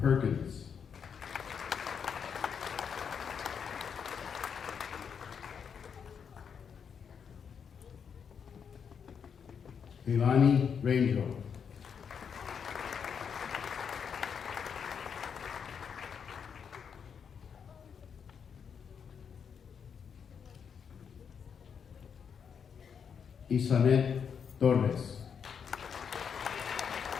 Perkins. Ilani Rangel. Isanet Torres.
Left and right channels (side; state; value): right; quieter; 7.0 dB